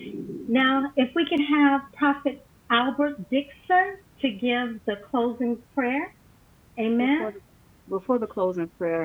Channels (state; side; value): identical; both; correlation 1.00